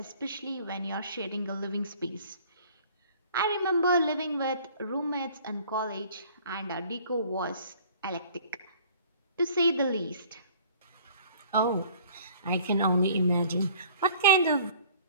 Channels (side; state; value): both; inverted; correlation -0.53